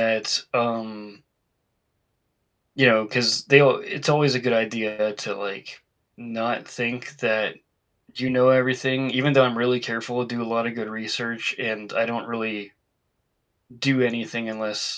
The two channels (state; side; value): identical; both; correlation 1.00